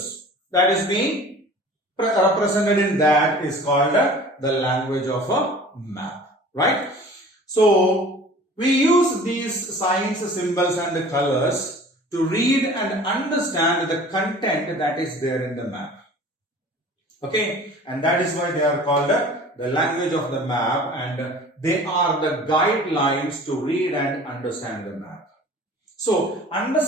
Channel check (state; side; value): normal; both; correlation 0.44